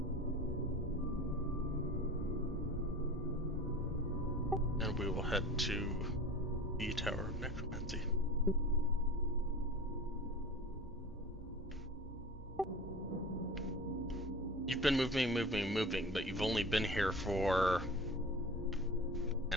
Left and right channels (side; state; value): both; normal; correlation 0.36